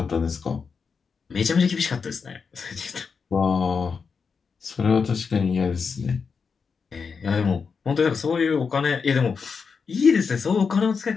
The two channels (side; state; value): right; quieter; 5.5 dB